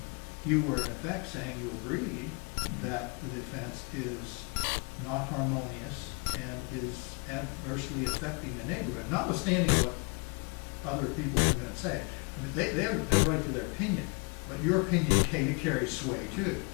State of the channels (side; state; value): right; quieter; 34.3 dB